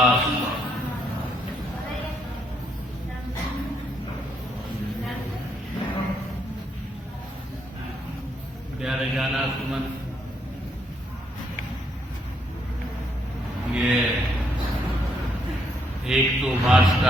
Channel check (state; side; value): normal; both; correlation 0.74